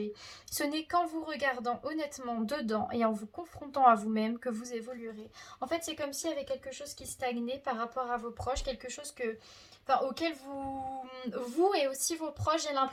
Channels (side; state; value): both; identical; correlation 1.00